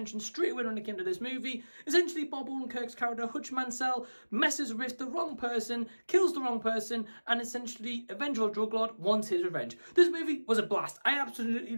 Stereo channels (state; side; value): inverted; both; correlation -1.00